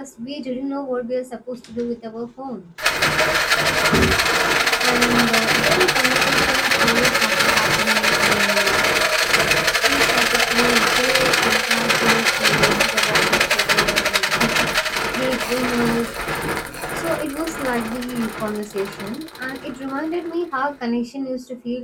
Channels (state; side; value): identical; both; correlation 1.00